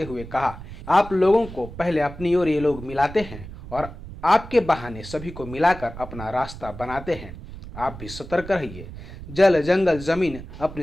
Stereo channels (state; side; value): noise; right; rumble, 13 dB below the sound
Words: हुए कहा, आप लोगों को पहले अपनी ओर ये लोग मिलाते हैं और आपके बहाने सभी को मिलाकर अपना रास्ता बनाते हैं। आप भी सतर्क रहिए। जल, जंगल, जमीन,